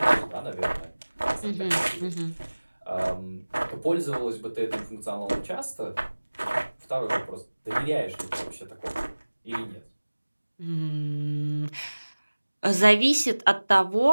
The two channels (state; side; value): inverted; both; correlation -1.00